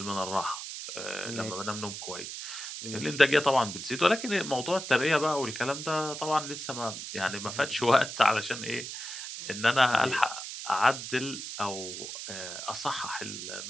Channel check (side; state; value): right; noise; hiss, 8 dB below the sound